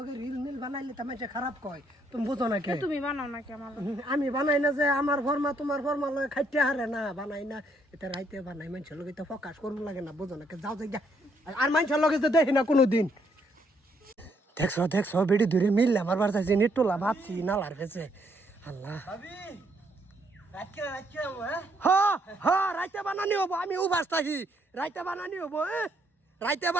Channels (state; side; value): normal; both; correlation 0.71